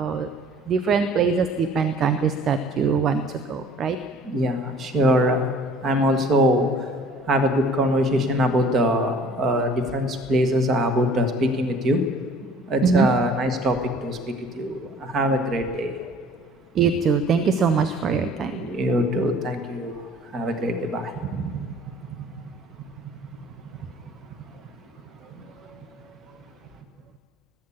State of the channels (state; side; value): normal; both; correlation 0.51